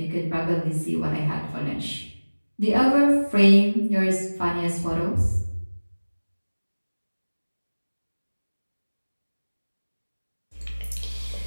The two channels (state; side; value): inverted; both; correlation -1.00